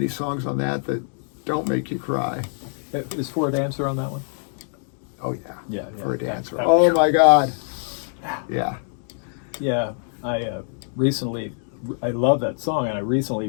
songs on that don't make you cry. Is For a Dancer on that one? Oh yeah. For a Dancer. Oh my God. Yeah. Yeah, I love that song, and I recently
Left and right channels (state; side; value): silent; right; 59 dB below the other